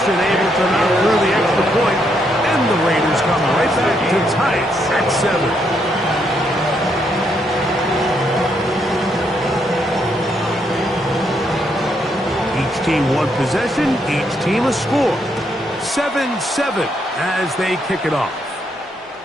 able to knock through the extra point, and the Raiders come right back to tie it at 7. Each team one possession, each team a score. 7-7 as they kick it off.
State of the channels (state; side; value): normal; both; correlation 0.76